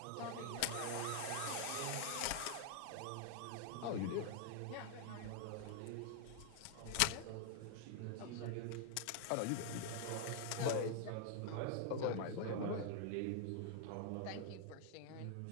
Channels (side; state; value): both; different; correlation 0.00